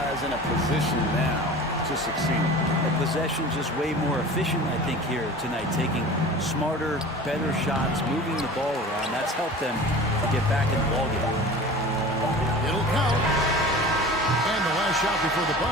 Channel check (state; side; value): normal; both; correlation 0.38